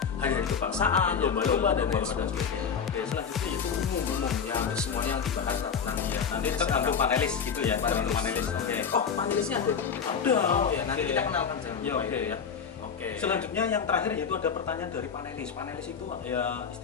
hari-hari kebangsaan, Iya, lomba-lomba dan lain lomba-lomba. sebagainya. Oke, selanjutnya itu umum. Ya, hampir semuanya yang dibahas tentang Iya, nanti tergantung panelis gitu ya, tergantung panelis. Oke. Oh, panelisnya ada? Ada. Oh ya, nanti Oke. kita kenalkan jangan Ya, lupa oke. itu ya. Oke. Selanjutnya yang terakhir yaitu ada pertanyaan dari panelis. Panelis itu ya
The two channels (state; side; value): quieter; right; 6.6 dB